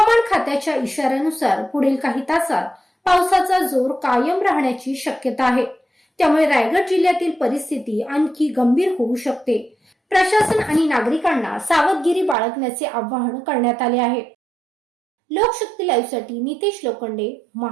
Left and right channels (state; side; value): drops out; left; at 12.4 s